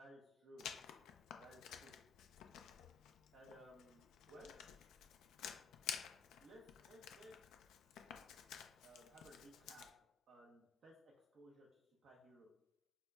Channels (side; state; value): right; quieter; 6.5 dB